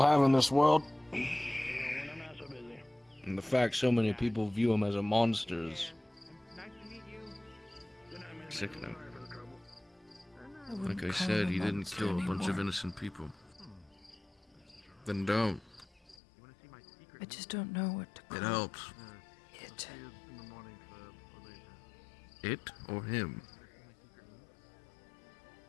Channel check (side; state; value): right; drops out; at 16.2 s